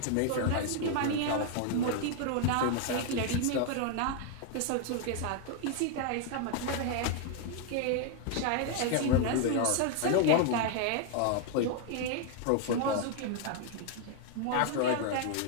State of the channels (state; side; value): different; both; correlation 0.00